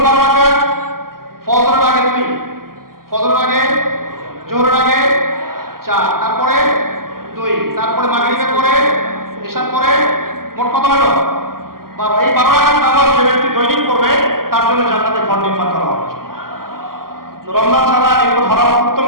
12 রাকাত? ফজরের আগে 2, ফজরের আগে, জোহরের আগে 4, তারপরে 2, তারপরে মাগরিবের পরে, এশার পরে, মোট কত হলো?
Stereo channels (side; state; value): left; late; 0.92 ms